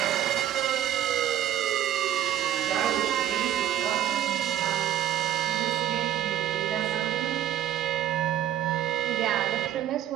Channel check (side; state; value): left; quieter; 11.3 dB